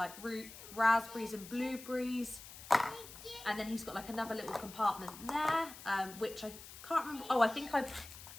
raspberries and blueberries. And then he's got like another little compartment there, which I can't remember. Oh, I think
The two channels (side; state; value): left; noise; hiss, 15 dB below the sound